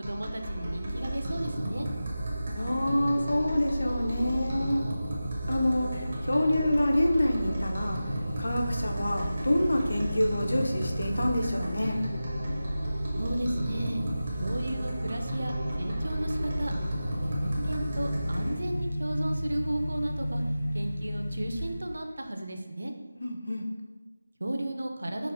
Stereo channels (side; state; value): both; inverted; correlation -0.95